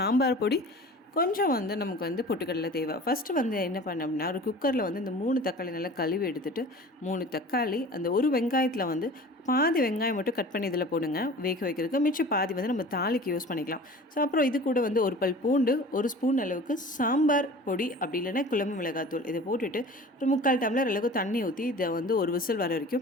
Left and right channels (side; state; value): both; normal; correlation 0.41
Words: பொடி, கொஞ்சம் வந்து நமக்கு வந்து பொட்டுக்கடலை தேவை. ஃபஸ்ட்டு வந்து என்ன பண்ணோம்னா, ஒரு குக்கரில் வந்து இந்த 3 தக்காளி நல்லா கழுவி எடுத்துகிட்டு 3 தக்காளி, அந்த ஒரு வெங்காயத்தில் வந்து பாதி வெங்காயம் மட்டும் கட் பண்ணி இதில் போடுங்க வேக வைக்கிறதுக்கு. மிச்சம் பாதி வந்து நம்ம தாளிக்கு யூஸ் பண்ணிக்கலாம். ஸோ அப்புறம் இது கூட வந்து ஒரு பல் பூண்டு, ஒரு ஸ்பூன் அளவுக்கு சாம்பார் பொடி, அப்படி இல்லைன்னா குழம்பு மிளகாத்தூள் இதை போட்டுட்டு ஒரு 3/4 டம்ளர் அளவுக்கு தண்ணி ஊற்றி இதை வந்து ஒரு விசில் வர